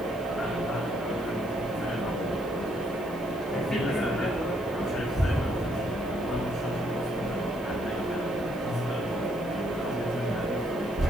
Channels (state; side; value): noise; left; hiss, 22 dB below the sound